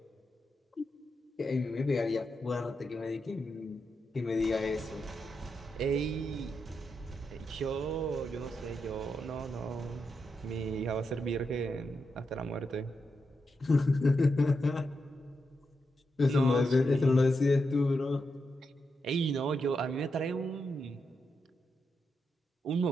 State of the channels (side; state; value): both; normal; correlation 0.85